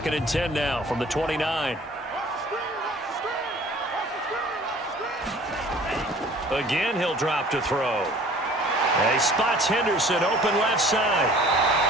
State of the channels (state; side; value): normal; both; correlation 0.50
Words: and 10 now from the 29. Again, he'll drop to throw. He spots Henderson open left side.